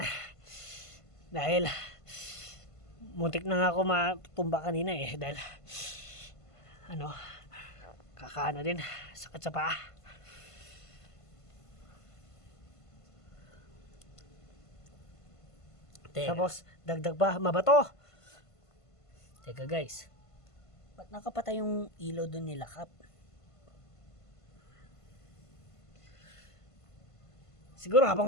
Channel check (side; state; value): right; late; 1.5 ms